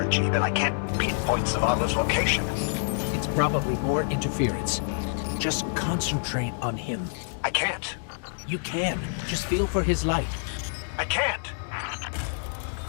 energy, then I can't pinpoint Zavala's location. It's probably more interference. Just concentrate on him. I can't. You can. Just feel for his light. I can't.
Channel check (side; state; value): right; silent; digital silence